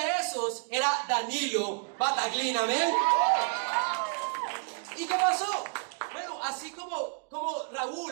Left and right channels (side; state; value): left; quieter; 39.9 dB